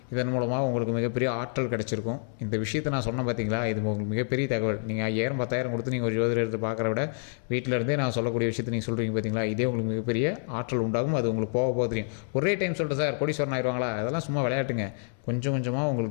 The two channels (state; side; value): silent; right; digital silence